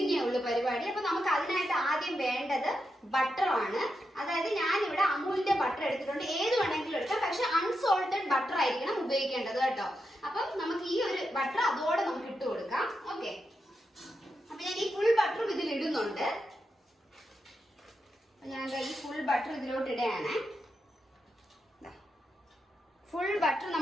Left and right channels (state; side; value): normal; both; correlation 0.86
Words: ഉള്ളു പരിപാടി. അപ്പൊ നമുക്ക് അതിനായിട്ട് ആദ്യം വേണ്ടത് ബട്ടറാണ്. അതായത് ഞാനിവിടെ അമൂലിന്റെ ബട്ടർ എടുത്തിട്ടുണ്ട്. ഏത് വേണമെങ്കിലും എടുക്കാം, പക്ഷെ അൺസോൾട്ടഡ് ബട്ടർ ആയിരിക്കണം ഉപയോഗിക്കേണ്ടത് കേട്ടോ. അപ്പം നമുക്ക് ഈ ഒരു ബട്ടർ അതോടെ നമുക്ക് ഇട്ട് കൊടുക്കാം. ഓക്കെ, അപ്പൊ ഞാൻ ഈ ഫുൾ ബട്ടറും ഇതിൽ ഇടുന്നുണ്ട്. ഞാൻ ഈ ഫുൾ ബട്ടർ ഇതിലോട്ട് ഇടുകയാണ്. ഫുൾ ബട്ടർ